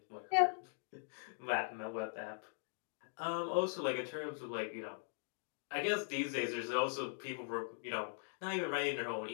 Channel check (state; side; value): silent; right; digital silence